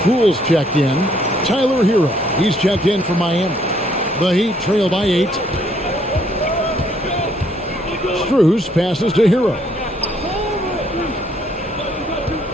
Poole's checked in. Tyler Hero. He's checked in for Miami. The Heat trail by 8. Strus passes to Hero.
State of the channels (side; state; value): both; normal; correlation 0.67